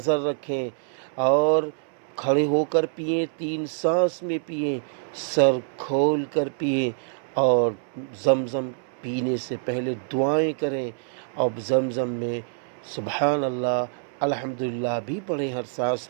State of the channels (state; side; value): silent; left; 61 dB below the other